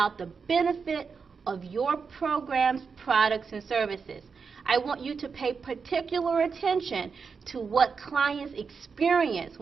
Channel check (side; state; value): left; quieter; 5.5 dB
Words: the benefit of your programs, products, and services. I want you to pay particular attention to what clients experience